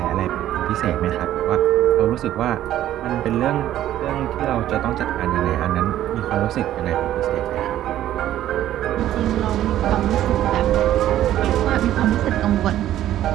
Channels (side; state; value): left; quieter; 12.7 dB